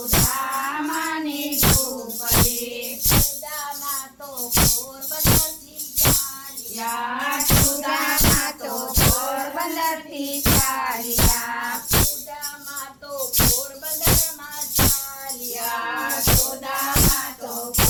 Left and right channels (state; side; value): identical; both; correlation 1.00